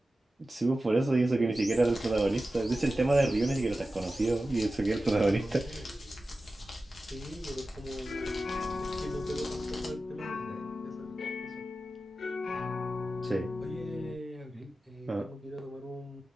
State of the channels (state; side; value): normal; both; correlation 0.94